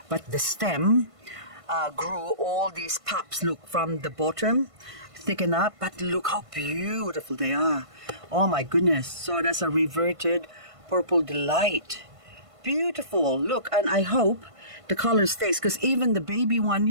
but the stem grew all these pups, look, from the bottom, thicken up, but look how beautiful they are. Oh my goodness. So that's a reverted Purple Delight. Beautiful. Look, and I hope the color stays, because even the baby one,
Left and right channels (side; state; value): left; late; 1.5 ms